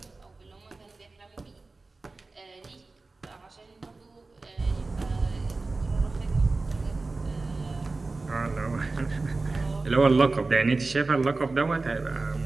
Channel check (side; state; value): left; quieter; 3.6 dB